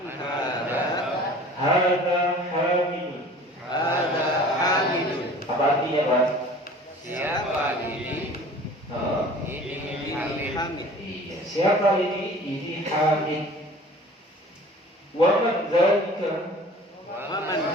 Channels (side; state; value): both; normal; correlation 0.46